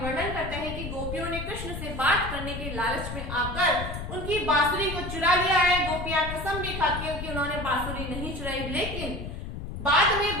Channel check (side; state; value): left; noise; rumble, 7 dB below the sound